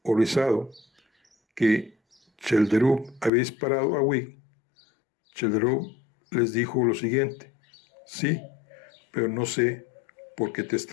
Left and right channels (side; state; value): right; drops out; at 3.3 s